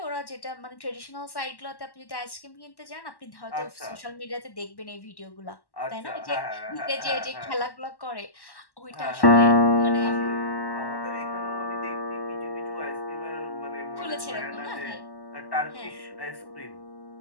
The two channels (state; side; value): late; right; 1.1 ms